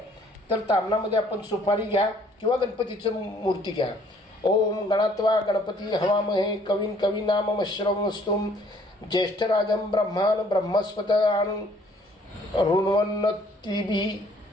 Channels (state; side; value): normal; both; correlation 0.61